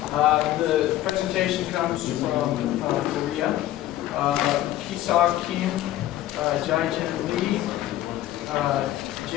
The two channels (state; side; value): quieter; right; 14.1 dB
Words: The presentation comes from Korea. Kiseok Kim, Jae-jin Lee,